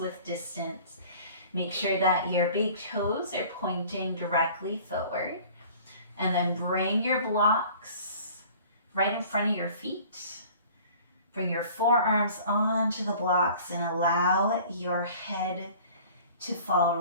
distance. Make sure that your big toes are pointing directly forward. And then bring your blocks right in front of your feet. Bring your forearms onto the blocks and allow your head to fall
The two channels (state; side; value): inverted; both; correlation -0.48